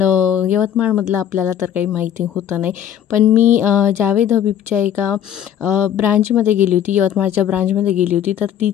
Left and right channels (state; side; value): quieter; right; 10.0 dB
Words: यवतमाळमधलं आपल्याला तर काही माहिती होतं नाही. पण मी जावेद हबीबच्या एका ब्रांचमध्ये गेली होती, यवतमाळच्या ब्रांचमध्ये गेली होती. तर